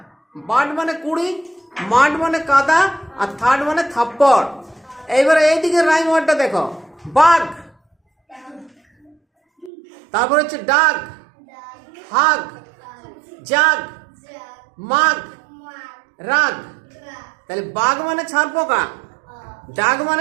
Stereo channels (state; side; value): drops out; left; at 9.7 s